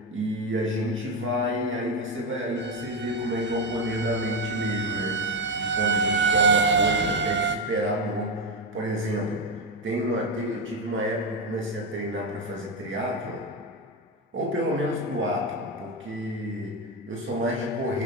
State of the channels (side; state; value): both; normal; correlation 0.11